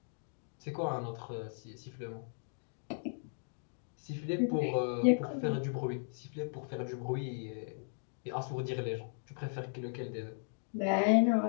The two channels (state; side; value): silent; right; digital silence